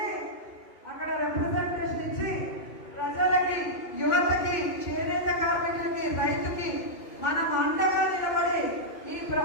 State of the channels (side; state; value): right; late; 2.1 ms